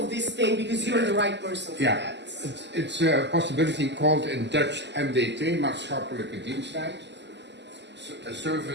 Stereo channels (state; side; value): late; left; 0.51 ms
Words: this thing? Because you're the right person for that. It's a possibility called in Dutch MDT, maatschappelijke diensttijd. A